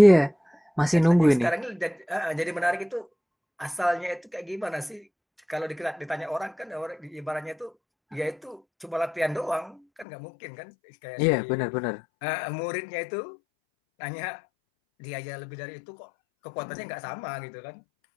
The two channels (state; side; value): drops out; right; at 10.1 s